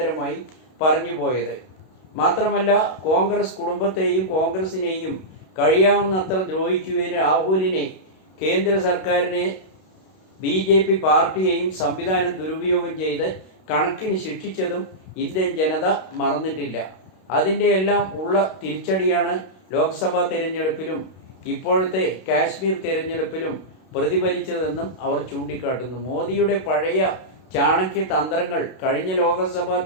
പറഞ്ഞു പോയത്. മാത്രമല്ല, കോൺഗ്രസ് കുടുംബത്തെയും കോൺഗ്രസിനെയും കഴിയാവുന്നത്ര ദ്രോഹിക്കുകയും രാഹുലിനെ, കേന്ദ്ര സർക്കാരിനെ, BJP പാർട്ടിയെയും സംവിധാനം ദുരുപയോഗം ചെയ്ത് കണക്കിന് ശിക്ഷിച്ചതും ഇന്ത്യൻ ജനത മറന്നിട്ടില്ല. അതിൻ്റെ എല്ലാം ഉള്ള തിരിച്ചടിയാണ് ലോക്സഭാ തിരഞ്ഞെടുപ്പിലും ഇപ്പോഴത്തെ കാശ്മീർ തിരഞ്ഞെടുപ്പിലും പ്രതിഫലിച്ചതെന്നും അവർ ചൂണ്ടിക്കാട്ടുന്നു. മോദിയുടെ പഴയ ചാണക്യ തന്ത്രങ്ങൾ കഴിഞ്ഞ ലോക്സഭാ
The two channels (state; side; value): late; right; 32 ms